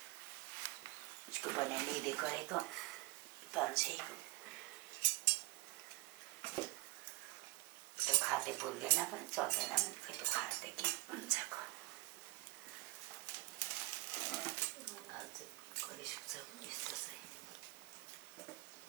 उसको पनि लिँदै गरेको 500 त्यो खाते बोल्दैन पनि चल्दैन पनि खै त्यो खाते के हुन्छ कहिले सुक्छ यस्तो चाहिँ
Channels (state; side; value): quieter; left; 21.3 dB